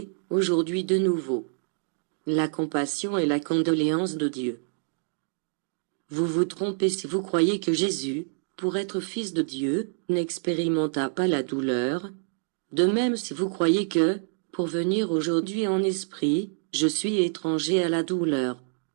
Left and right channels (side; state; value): left; silent; 60 dB below the other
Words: aujourd'hui de nouveau. La compassion et la condoléance de Dieu. Vous vous trompez si vous croyez que Jésus, pour être fils de Dieu, n'expérimenta pas la douleur. De même si vous croyez que, pour venir aujourd'hui en esprit, je suis étranger à la douleur.